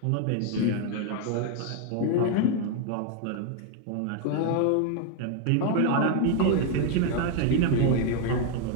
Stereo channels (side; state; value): both; different; correlation 0.01